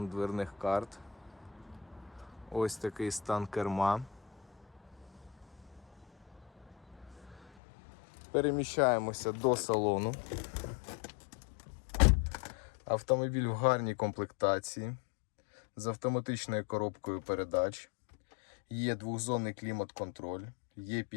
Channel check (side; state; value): right; drops out; at 7.5 s